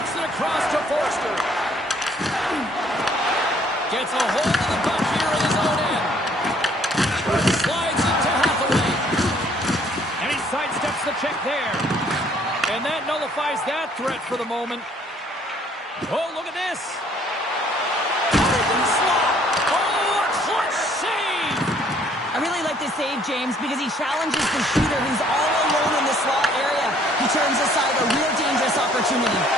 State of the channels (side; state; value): both; normal; correlation 0.61